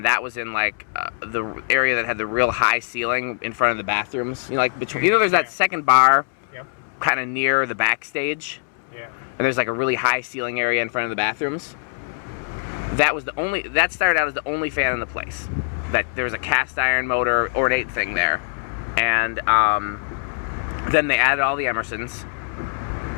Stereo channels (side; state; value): right; silent; 64 dB below the other